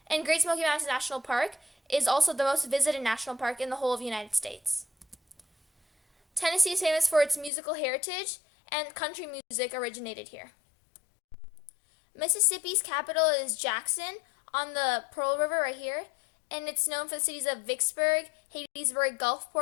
And Great Smoky Mountains National Park is also the most visited national park in the whole of the United States. Tennessee is famous for its musical heritage, and country music originated here. Mississippi's capital is Jackson on the Pearl River right here, and it's known for the cities of Vicksburg, Hattiesburg,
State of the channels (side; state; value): right; drops out; at 7.5 s